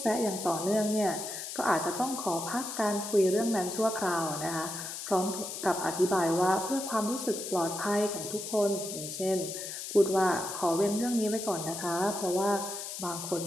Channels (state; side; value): noise; left; hiss, 7 dB below the sound